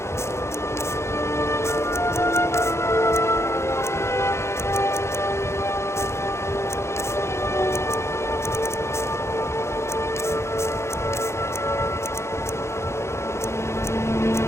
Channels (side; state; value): right; late; 0.13 ms